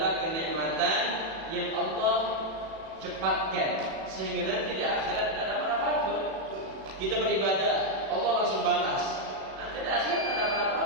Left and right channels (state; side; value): late; left; 36 ms